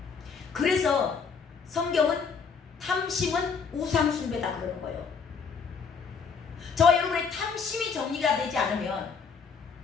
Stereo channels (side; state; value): right; quieter; 5.7 dB